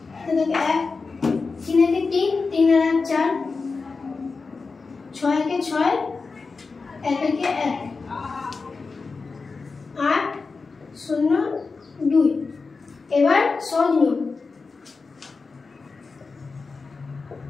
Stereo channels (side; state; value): right; quieter; 4.4 dB